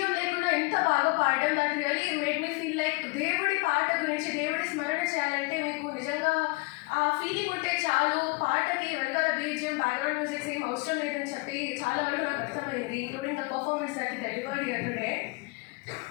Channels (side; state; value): right; quieter; 27.6 dB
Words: లేకుండా ఇంత బాగా పాడడం దట్ రియలీ మేడ్ దేవుడి పాట గురించి, దేవుడి స్మరణ చేయాలంటే మీకు నిజంగా ఆ ఫీలింగ్ ఉంటే చాలు. పాటకి వెనకాల బీజిఎం, బ్యాక్గ్రౌండ్ మ్యూజిక్స్ ఏం అవసరం లేదని చెప్పి చాలా వరకు నాకు అర్థమైంది, including the performance that delivered here today.